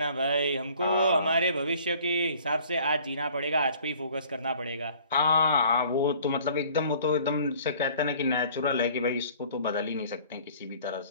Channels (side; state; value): both; inverted; correlation -0.53